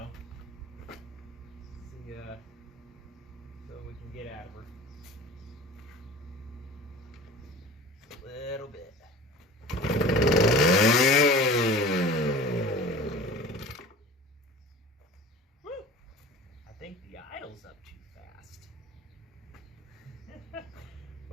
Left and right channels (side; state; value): both; normal; correlation 0.39